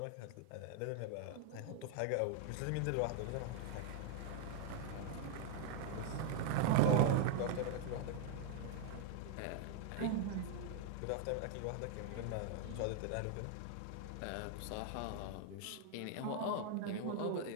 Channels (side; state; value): both; different; correlation 0.00